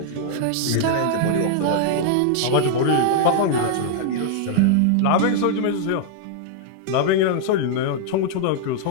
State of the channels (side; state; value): both; different; correlation -0.01